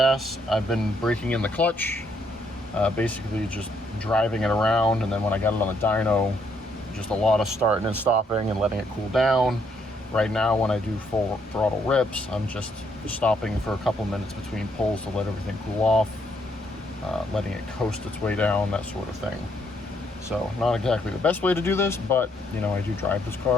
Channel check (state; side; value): normal; both; correlation 0.72